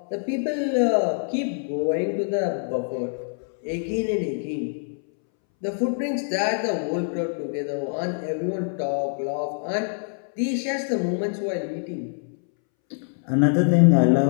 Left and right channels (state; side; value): silent; right; 62 dB below the other